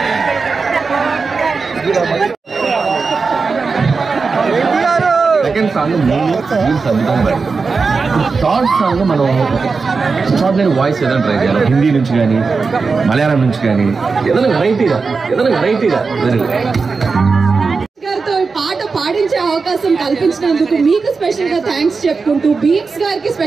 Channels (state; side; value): quieter; left; 4.6 dB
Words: సెకండ్ సాంగ్ అద్భుతంగా థర్డ్ సాంగ్ మనం ఎక్స్ట్రాడినరీ వాయిస్ ఏదైనా ట్రై చేయాలి. హిందీ నుంచి కానీ, మలయాళం నుంచి కానీ, ఏదైనా వెరైటీగా గారితో పాట పాడించే అవకాశం కల్పించినందుకు మీకు స్పెషల్ గా థ్యాంక్స్ చెప్పుకుంటూ, బీట్స్ గారికి